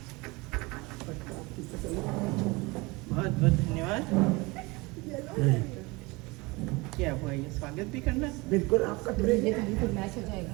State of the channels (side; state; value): left; quieter; 24.5 dB